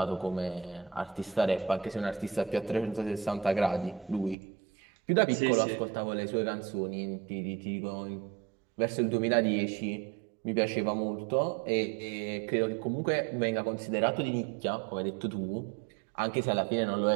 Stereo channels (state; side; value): drops out; left; at 4.4 s